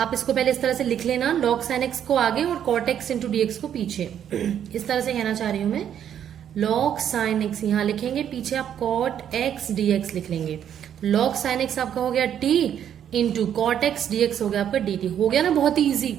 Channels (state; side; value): quieter; left; 9.5 dB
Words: इसको पहले इस तरह से लिख लेना, log sin x को आगे और cot x इंटू dx को पीछे। इस तरह से कहना चाह रही हूं मैं, log sin x यहाँ लिखेंगे, पीछे आप cot x dx लिख लेंगे। log sin x आपका हो गया t into cot x dx हो गया आपका dt। हो गया ना, बहुत ही ईजी।